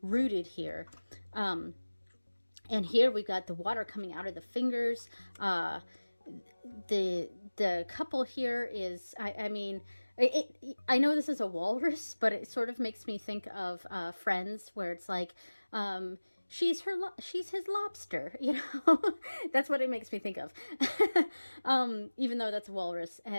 rooted here. And here we've got the water coming out of the fingers. The couple here is, I mean, I know this is a walrus, but it sort of makes me think of Friends, where it's like, she's his lobster, you know. That's what it makes me think of. Even though that's a walrus,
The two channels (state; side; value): inverted; both; correlation -1.00